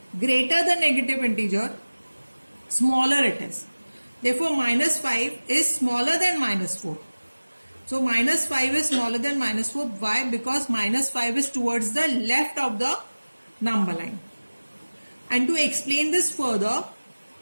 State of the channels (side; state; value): both; inverted; correlation -1.00